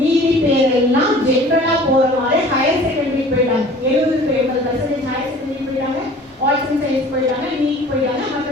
பேரெல்லாம் ஜெனரலா போற மாதிரி ஹையர் செகண்டரி போயிட்டாங்க. 70% ஹையர் செகண்டரி போயிட்டாங்க, ஆர்ட்ஸ் அண்ட் சயின்ஸ் போயிட்டாங்க, நீட் போயிட்டாங்க,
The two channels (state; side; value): normal; both; correlation 0.47